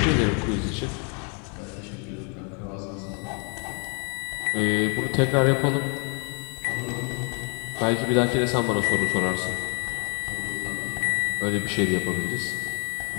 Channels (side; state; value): right; quieter; 37.2 dB